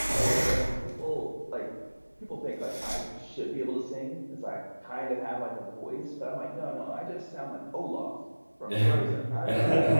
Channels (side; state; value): both; inverted; correlation -1.00